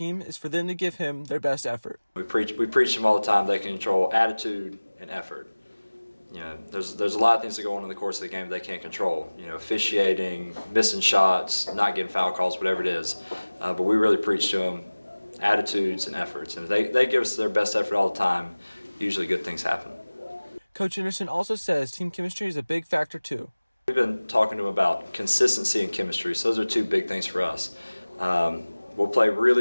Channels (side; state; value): both; inverted; correlation -1.00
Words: is for them to give him their best effort. We preach them all the time. They can control attitude and effort. There's a lot of things that go on in the course of the game that they can't control. Officiating, missing shots, not getting foul calls, whatever it is. But we really preach to them attitudes and efforts. And if they give us their best effort all the time, usually good things happen. Coach Anderson also says team chemistry is a big factor too. We've been talking to them about consistency and chemistry. So those are two big things for us. We'll play really,